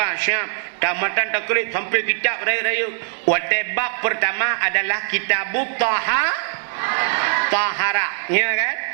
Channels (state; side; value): silent; left; digital silence